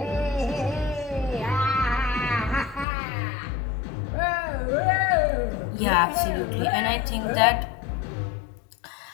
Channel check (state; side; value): drops out; right; at 2.9 s